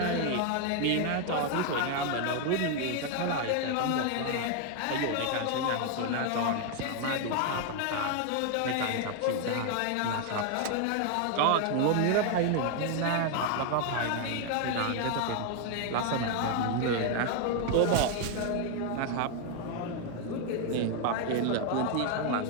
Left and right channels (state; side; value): different; both; correlation 0.01